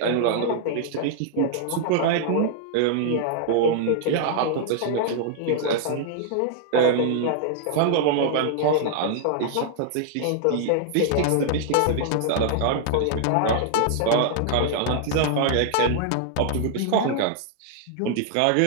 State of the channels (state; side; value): different; both; correlation -0.01